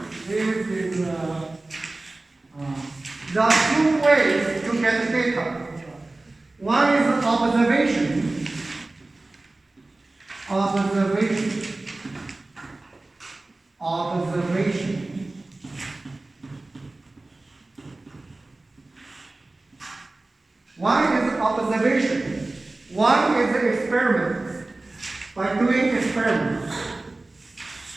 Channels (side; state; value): left; quieter; 3.0 dB